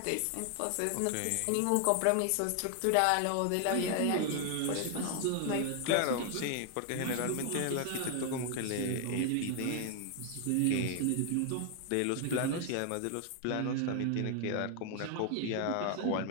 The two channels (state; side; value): different; both; correlation 0.00